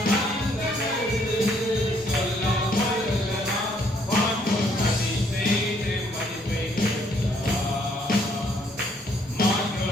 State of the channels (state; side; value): normal; both; correlation 0.67